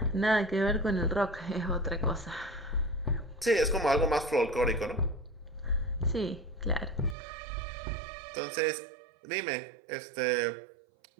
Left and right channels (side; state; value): left; drops out; at 7.2 s